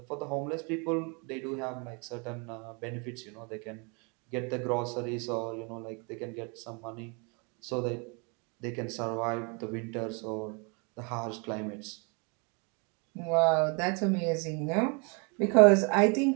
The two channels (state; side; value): quieter; left; 33.1 dB